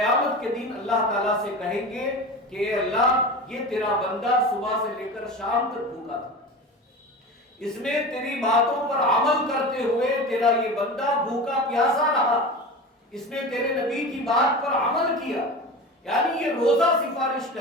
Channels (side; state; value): both; normal; correlation 0.30